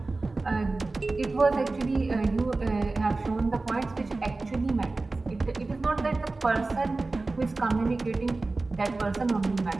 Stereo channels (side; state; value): left; quieter; 3.4 dB